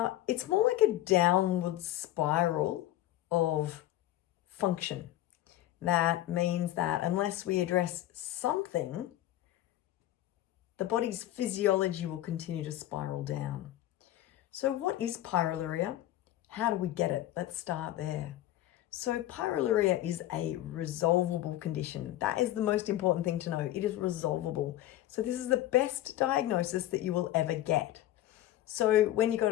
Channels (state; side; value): quieter; right; 14.2 dB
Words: it's more like a downward spiral of function. That means that unless we address something, the body's physiology will continue to spiral down. So what is pyroluria? How do we get it? Let's start there. So pyroluria is a resolvable condition. That is the most important thing to know. It is resolvable. So this is the best diagnosis that you will ever get. So when you go